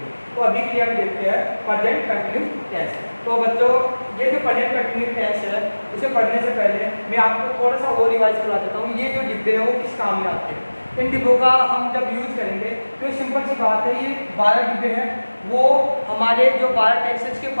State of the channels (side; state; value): both; inverted; correlation -1.00